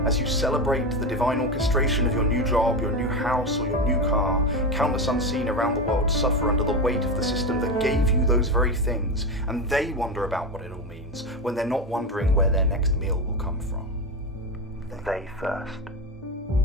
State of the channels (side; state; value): both; normal; correlation 0.17